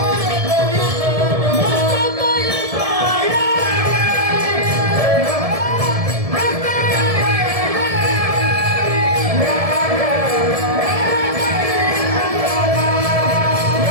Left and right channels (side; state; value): left; late; 1.7 ms